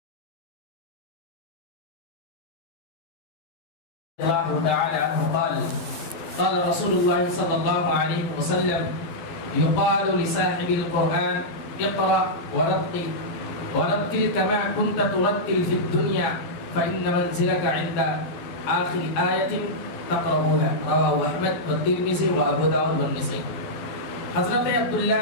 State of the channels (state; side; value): late; right; 12 ms